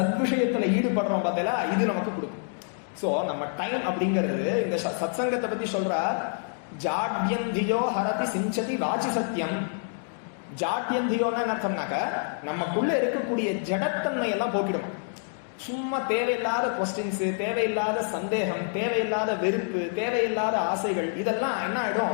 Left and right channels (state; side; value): silent; right; 60 dB below the other